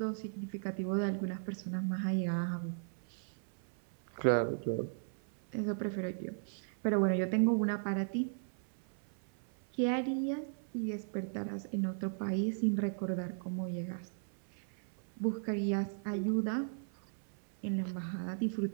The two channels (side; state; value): left; silent; 53 dB below the other